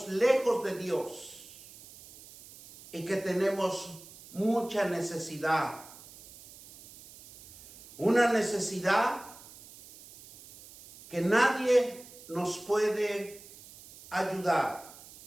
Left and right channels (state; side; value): noise; right; hiss, 19 dB below the sound